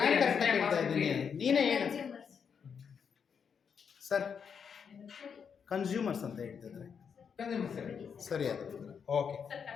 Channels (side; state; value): right; quieter; 6.8 dB